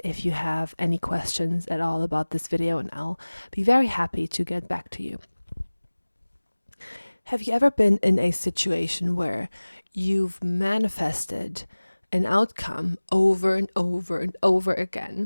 if you have any questions at all about this video, and I'll be very happy to get back to you. Have you ever been in a situation where you've manifested an outcome over and over and over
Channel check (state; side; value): inverted; both; correlation -1.00